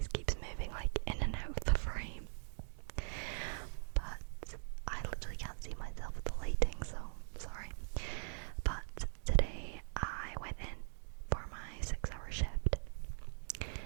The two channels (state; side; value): silent; left; digital silence